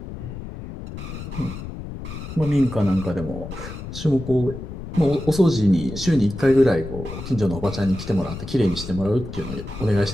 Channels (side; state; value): left; noise; rumble, 10 dB below the sound